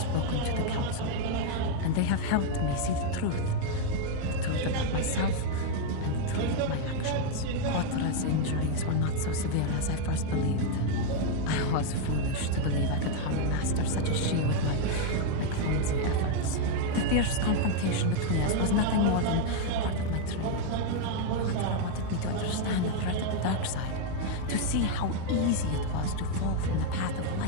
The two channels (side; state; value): both; different; correlation 0.00